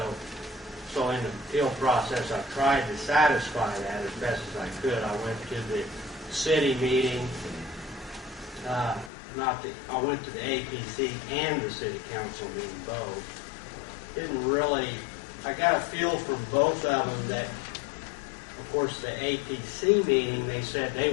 in the appeal process, I tried to satisfy that as best as I could. I went to the city meeting. I went to the APC and the city council meeting both. I got a feel from both of them that, of course, the APC meeting, they said they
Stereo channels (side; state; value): right; drops out; at 9.1 s